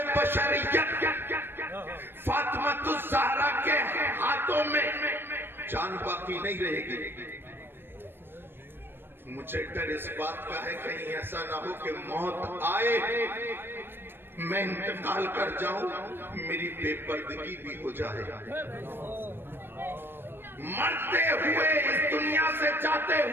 بشریت فاطمہ الزہرا کے ہاتھوں میں جان باقی نہیں رہے گی۔ مجھے ڈر اس بات کا ہے کہیں ایسا نہ ہو کہ موت آئے، میں انتقال کر جاؤں، میری بے پردگی بھی ہو جائے، مرتے ہوئے اس دنیا سے جاتے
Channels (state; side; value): late; left; 0.10 ms